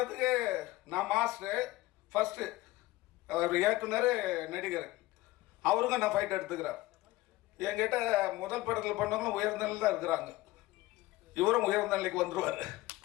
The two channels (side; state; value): right; quieter; 18.4 dB